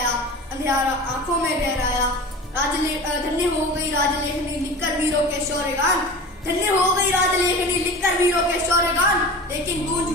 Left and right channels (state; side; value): normal; both; correlation 0.35